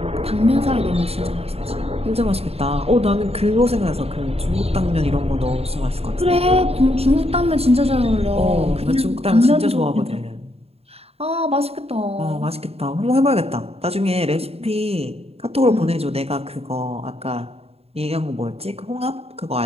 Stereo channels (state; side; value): late; left; 0.29 ms